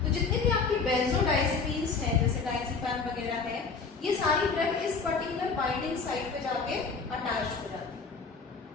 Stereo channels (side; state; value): right; quieter; 4.8 dB